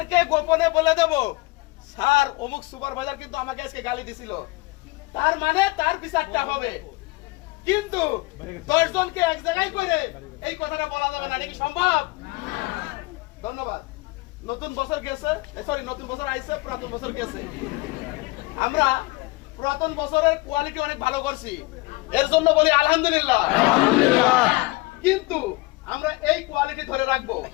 গোপনে বলে দেব, স্যার অমুক সুপারভাইজার কিন্তু আমাকে আজকে গালি দিছিল, তার মানে তার বিচারটা হবে। কিন্তু 10 জনকে এক জায়গায় করে এই কথাটা বলা যাবে না, এটা কি সম্ভব? ধন্যবাদ। নতুন বছর গেছে, সরি নতুন বছর আইছে, পুরাতন বছর গেছে। আমরা পুরাতন বছরের কোয়ালিটি অনেক ভালো করছি, এর জন্য বলি আলহামদুলিল্লাহ। কিন্তু আমরা এই কোয়ালিটি ধরে রাখবো,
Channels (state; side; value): quieter; right; 22.8 dB